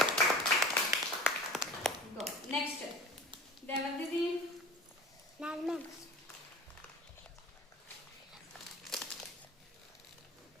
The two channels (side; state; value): both; normal; correlation 0.40